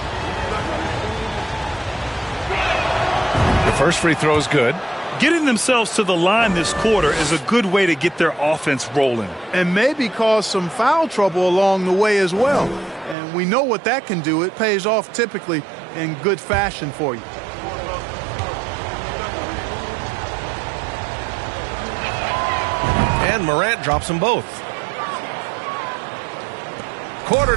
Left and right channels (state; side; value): drops out; left; at 13.2 s